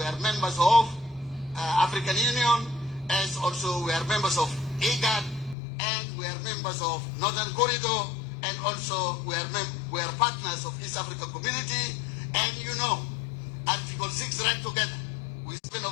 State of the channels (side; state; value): right; drops out; at 5.6 s